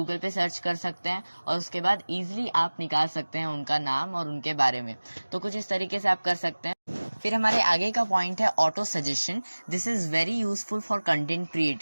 पे सर्च कर सकते हैं और उसके बाद इजीली आप निकाल सकते हैं उनका नाम और उनके बारे में। तो कुछ इस तरीके से आप कर सकते हैं। फिर हमारे आगे का पॉइंट है auto suggestion. This is very useful for content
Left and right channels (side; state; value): both; inverted; correlation -1.00